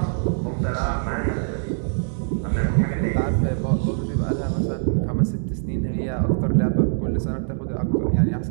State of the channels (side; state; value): left; silent; digital silence